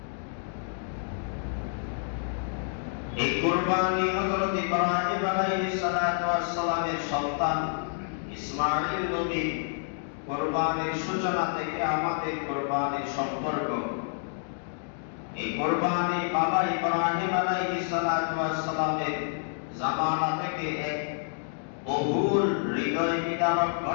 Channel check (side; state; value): right; silent; digital silence